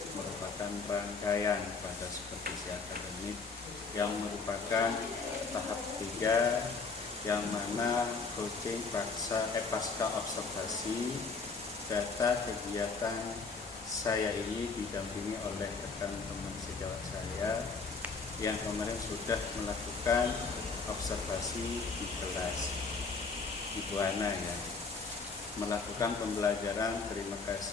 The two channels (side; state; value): right; quieter; 4.5 dB